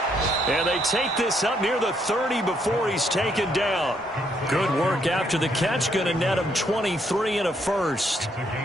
And they take this up near the 30 before he's taken down. Good work after the catch. Going to net him 23 and a first.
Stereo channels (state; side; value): normal; both; correlation 0.72